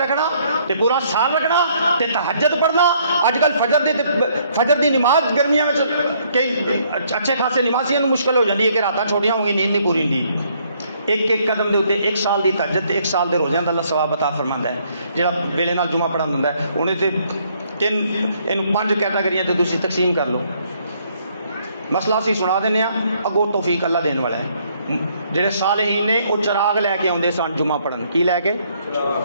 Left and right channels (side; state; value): both; inverted; correlation -0.67